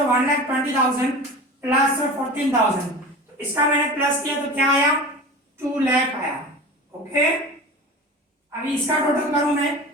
प्लस 14,000, तो इसका मैंने प्लस किया तो क्या आया 2 लाख आया। ओके, अभी इसका टोटल करूं मैं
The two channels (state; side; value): normal; both; correlation 0.34